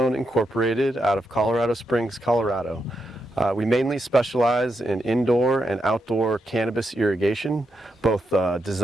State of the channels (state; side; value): normal; both; correlation 0.84